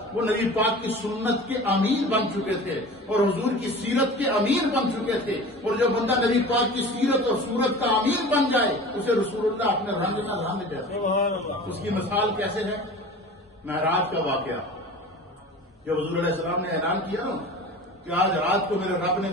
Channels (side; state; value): both; normal; correlation 0.38